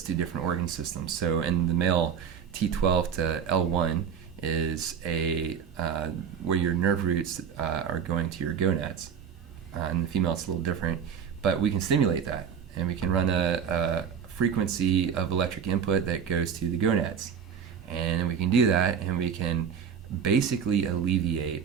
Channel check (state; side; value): quieter; left; 7.5 dB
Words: to different organ systems. So, in the male, T12 to L1 is where your nerve roots are going to your gonads. In the female, it's a little different, but we can stimulate that, and we can run a frequency of electric input that goes to the gonads, and we can do that, and we can basically alleviate